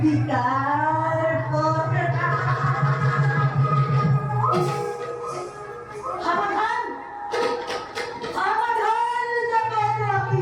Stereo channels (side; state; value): both; identical; correlation 1.00